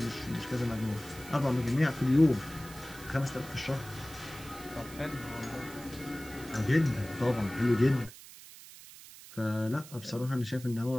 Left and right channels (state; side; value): noise; right; hiss, 17 dB below the sound